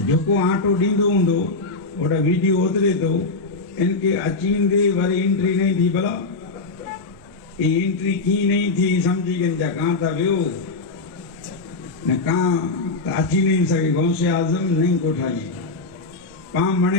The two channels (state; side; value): quieter; right; 3.6 dB